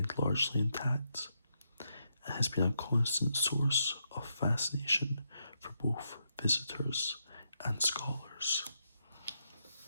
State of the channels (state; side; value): inverted; both; correlation -0.81